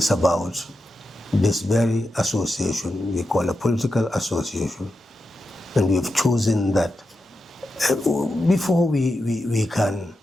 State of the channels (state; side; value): normal; both; correlation 0.88